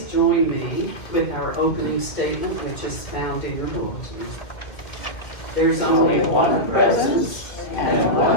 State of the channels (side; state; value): right; late; 2.1 ms